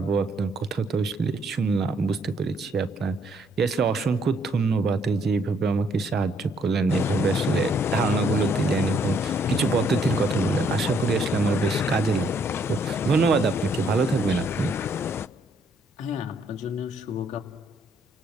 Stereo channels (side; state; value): both; normal; correlation 0.69